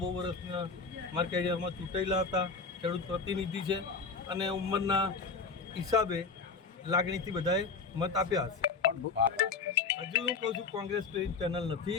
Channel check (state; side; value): quieter; right; 4.7 dB